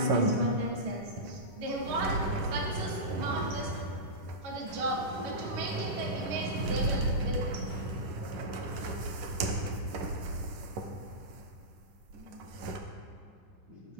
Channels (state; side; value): late; left; 10 ms